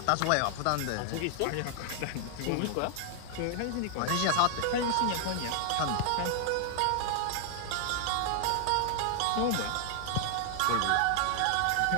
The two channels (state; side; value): different; both; correlation 0.00